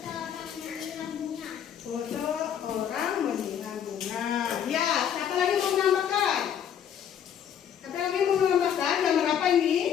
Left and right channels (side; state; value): right; quieter; 8.9 dB